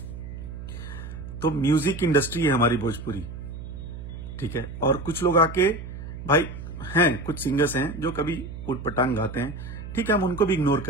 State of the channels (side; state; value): right; noise; hum, 10 dB below the sound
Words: तो म्यूजिक इंडस्ट्री है हमारी भोजपुरी, ठीक है। और कुछ लोग आके भाई हैं, कुछ सिंगर्स हैं जो कभी उटपटांग गाते हैं, ठीक है, हम उनको भी इग्नोर